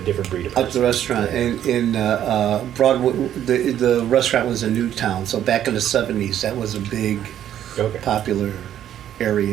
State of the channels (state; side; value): quieter; left; 10.9 dB